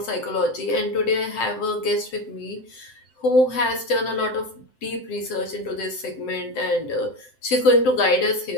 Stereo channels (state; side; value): late; right; 7.7 ms